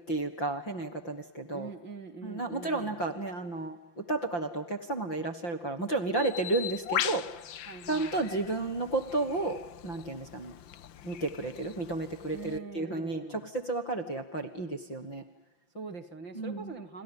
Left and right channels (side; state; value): right; late; 5.8 ms